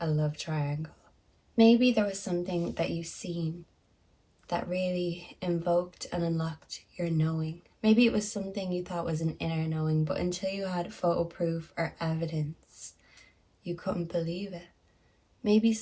love triangle. Maybe there was something that you've seen that really invoked and unlocked your knowing. Maybe it was something you thought was an inner knowing, but until you had photo proof or evidence, you couldn't believe it. Maybe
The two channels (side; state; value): both; identical; correlation 1.00